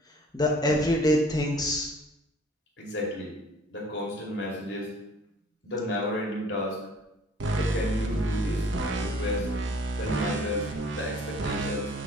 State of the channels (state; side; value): normal; both; correlation 0.54